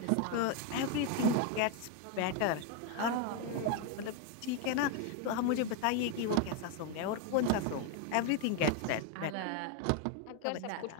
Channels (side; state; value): both; different; correlation 0.01